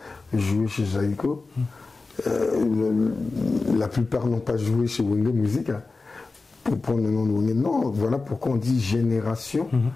joué chez Zaïko. La plupart n'ont pas joué chez Wenge Musica. Pour prendre le nom de Wenge. Non, voilà pourquoi on dit Génération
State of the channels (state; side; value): quieter; right; 3.8 dB